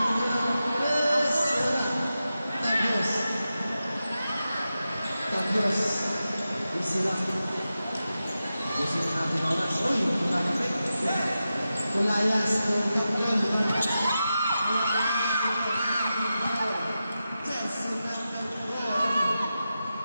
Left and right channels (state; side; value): inverted; both; correlation -0.91